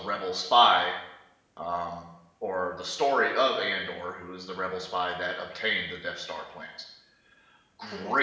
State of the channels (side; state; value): both; identical; correlation 1.00